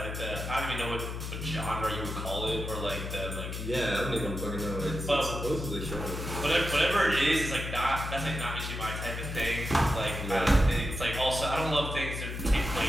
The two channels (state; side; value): noise; left; hum, 5 dB below the sound